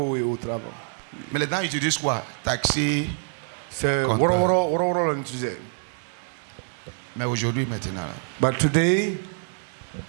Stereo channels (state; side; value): silent; left; 61 dB below the other